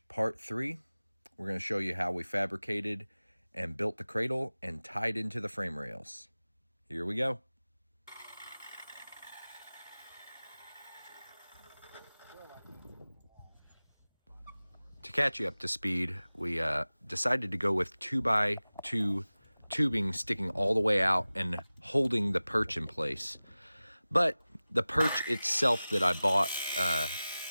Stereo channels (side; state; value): both; inverted; correlation -0.97